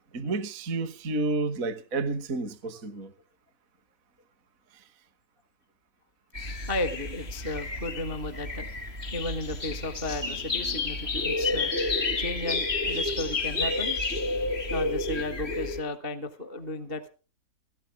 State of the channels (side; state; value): left; late; 3.0 ms